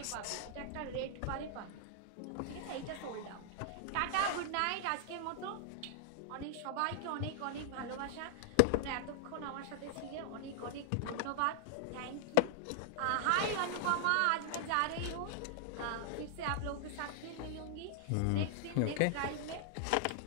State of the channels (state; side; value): different; both; correlation 0.00